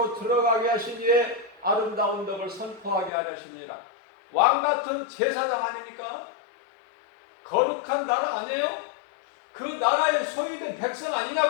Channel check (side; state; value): right; drops out; at 3.1 s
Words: 들어가게 하신 이의 아름다운 덕을 선포하게 하시니라. 왕같은 제사장 아닙니까? 거룩한 나라 아니에요? 그 나라의 소유된 백성